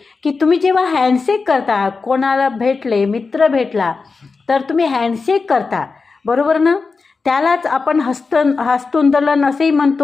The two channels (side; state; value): right; quieter; 4.4 dB